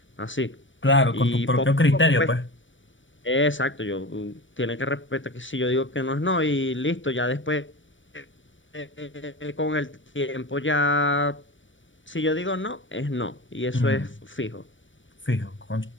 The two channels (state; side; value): late; right; 0.56 ms